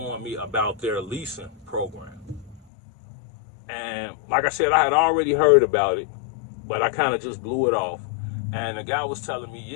me about their leasing program. And like I said, I had already heard about it, but I kind of just blew it off. And the guy was telling me,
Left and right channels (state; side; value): drops out; right; at 2.6 s